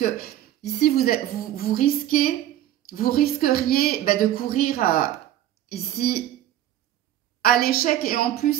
ici, vous risqueriez de courir ici à l'échec et en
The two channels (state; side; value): quieter; left; 12.5 dB